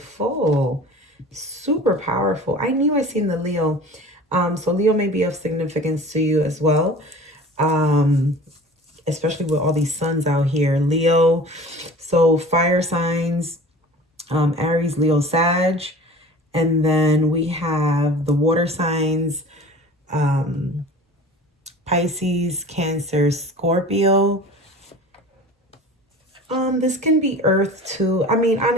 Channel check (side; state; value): both; normal; correlation 0.41